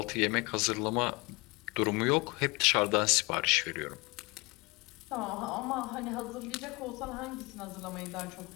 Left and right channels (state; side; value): quieter; right; 25.5 dB